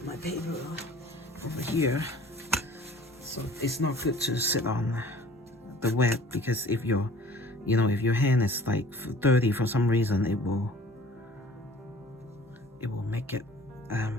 paper over here. So it's not good to sit on the wet, because if your, you know, if your hand is like dirty for some reason, it will make it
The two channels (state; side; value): normal; both; correlation 0.49